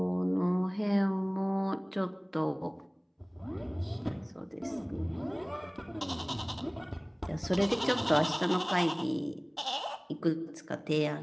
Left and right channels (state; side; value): identical; both; correlation 1.00